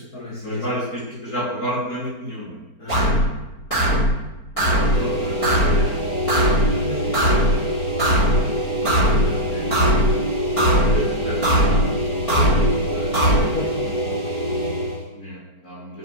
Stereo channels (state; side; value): late; right; 4.4 ms